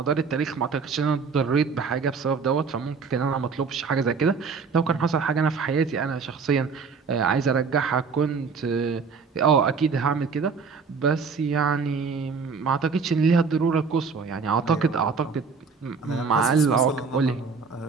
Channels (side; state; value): left; quieter; 5.2 dB